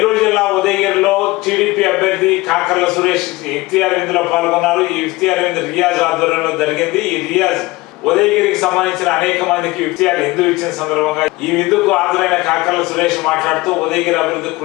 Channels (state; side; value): quieter; right; 20.8 dB